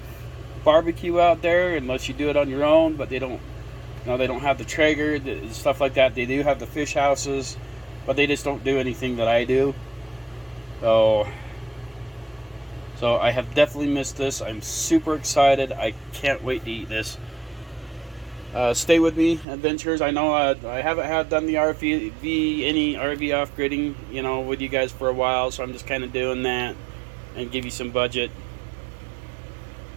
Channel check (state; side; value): drops out; left; at 19.5 s